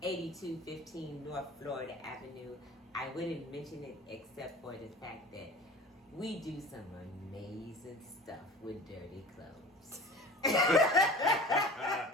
8215 North Florida Avenue. I wouldn't mention it except for the fact that we do some amazing stuff with dirty clothes.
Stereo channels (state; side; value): normal; both; correlation 0.40